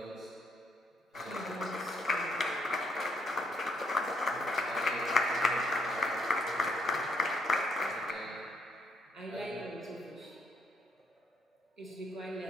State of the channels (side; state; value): both; normal; correlation 0.72